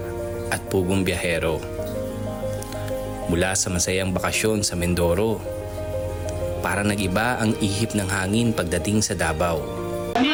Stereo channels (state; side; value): noise; right; rumble, 21 dB below the sound